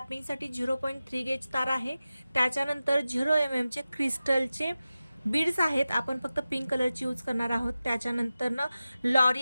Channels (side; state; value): both; inverted; correlation -0.95